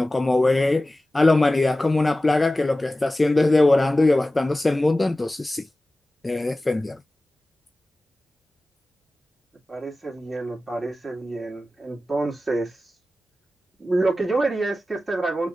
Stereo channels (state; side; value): normal; both; correlation 0.96